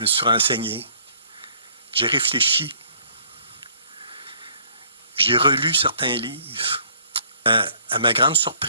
me suis renseigné. J'ai réfléchi. J'ai relu certains livres. À ma grande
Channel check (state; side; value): inverted; both; correlation -0.60